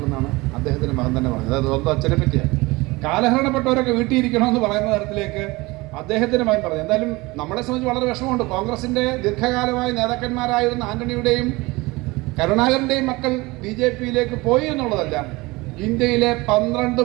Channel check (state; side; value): quieter; left; 22.5 dB